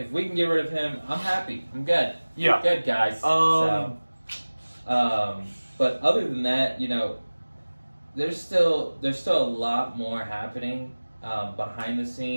we can get rid of him, I'm happy. I'm good. Yeah. Good, guys. But other than that, you know, there's still a lot more happening behind the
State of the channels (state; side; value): inverted; both; correlation -1.00